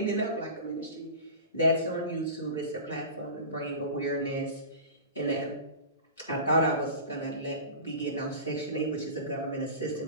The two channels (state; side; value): inverted; both; correlation -0.32